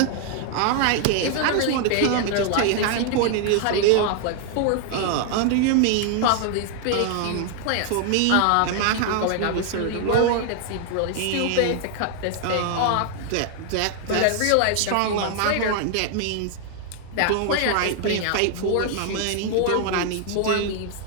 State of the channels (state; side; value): different; both; correlation 0.00